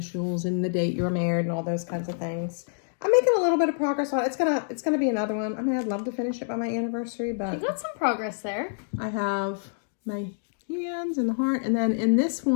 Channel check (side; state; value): right; silent; digital silence